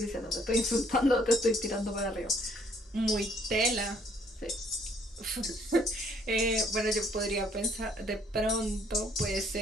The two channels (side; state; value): both; normal; correlation 0.64